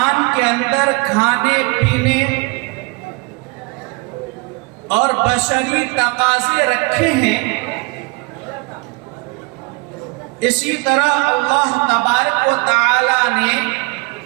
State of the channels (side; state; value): left; quieter; 27.2 dB